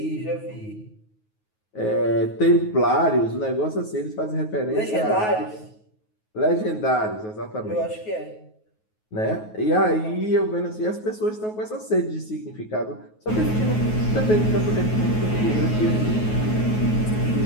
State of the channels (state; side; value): late; right; 9.4 ms